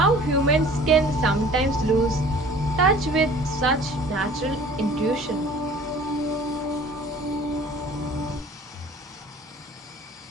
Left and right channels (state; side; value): normal; both; correlation 0.48